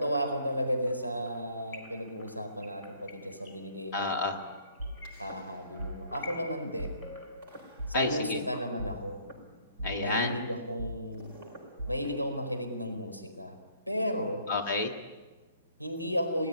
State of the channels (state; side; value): inverted; both; correlation -0.61